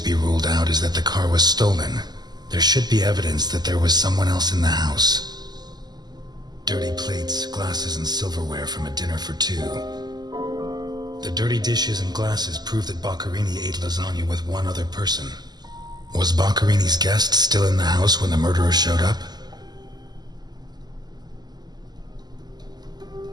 be ruled out is that the car was stolen. There should be evidence that there was someone else in the house. Dirty plates, glasses, and silverware from a dinner for 2. The dirty dishes and glasses prove that Boccherini ate lasagna with one other person. Was Boccherini's guest still in the house when the murderer showed up?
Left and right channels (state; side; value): late; left; 0.20 ms